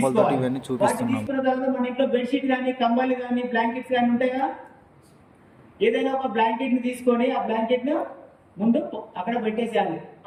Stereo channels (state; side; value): identical; both; correlation 1.00